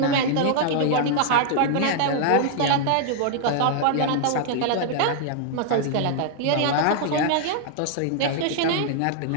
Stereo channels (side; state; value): both; different; correlation 0.00